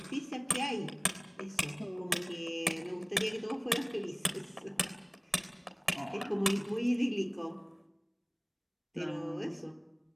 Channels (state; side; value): identical; both; correlation 1.00